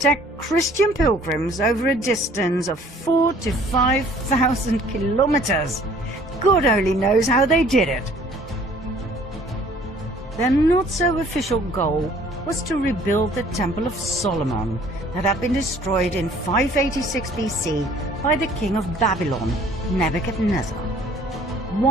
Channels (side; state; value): both; normal; correlation 0.55